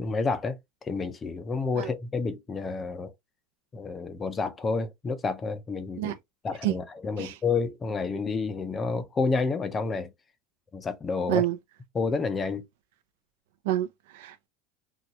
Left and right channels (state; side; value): normal; both; correlation 0.61